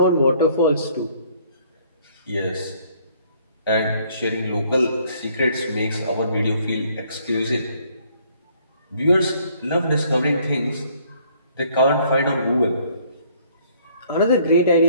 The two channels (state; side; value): inverted; both; correlation -0.62